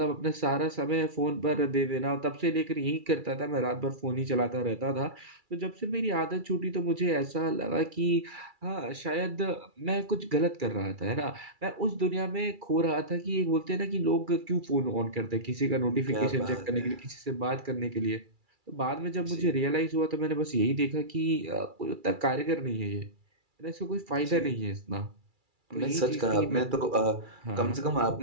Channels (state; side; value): late; left; 2.3 ms